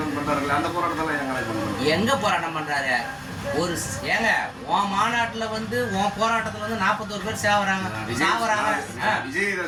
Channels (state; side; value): identical; both; correlation 1.00